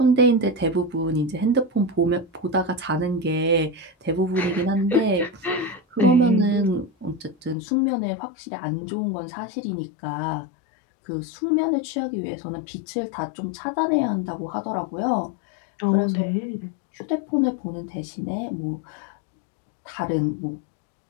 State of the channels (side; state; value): right; drops out; at 7.6 s